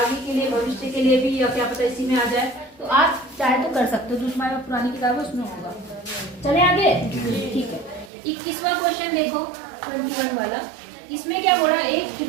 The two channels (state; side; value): drops out; left; at 8.1 s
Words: के लिए, भविष्य के लिए भी, या क्या पता इसी में आ जाए, तो आप चाहे तो कर सकते हो, जो तुम्हारे पास पुरानी किताब है उसमें होगा। चले आगे, ठीक है। 21वां क्वेश्चन देखो, 21 वाला। इसमें क्या बोला, एक